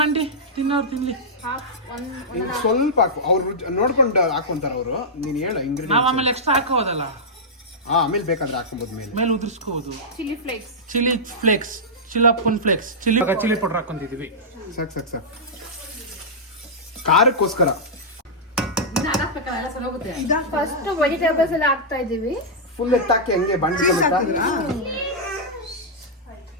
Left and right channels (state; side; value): normal; both; correlation -0.10